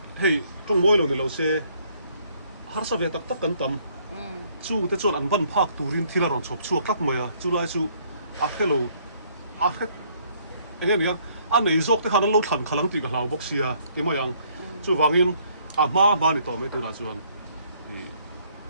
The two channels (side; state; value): both; inverted; correlation -0.64